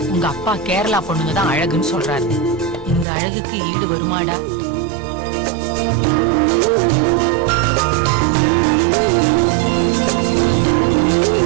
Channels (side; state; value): left; drops out; at 3.1 s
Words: உங்க அப்பா கேரளா பொண்ணுங்க தான் அழகுன்னு சொல்றாரு. இந்த அழகுக்கு ஈடு வருமாடா?